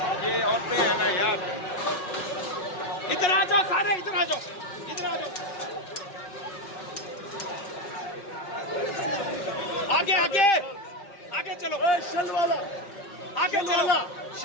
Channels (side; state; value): right; late; 5.5 ms